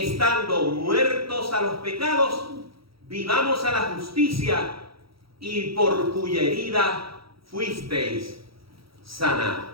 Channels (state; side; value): late; left; 0.75 ms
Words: muertos a los pecados, vivamos a la justicia, y por cuya herida fuisteis sanados.